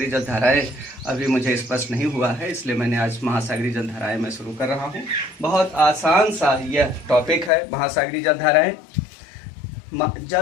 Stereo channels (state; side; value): drops out; right; at 7.5 s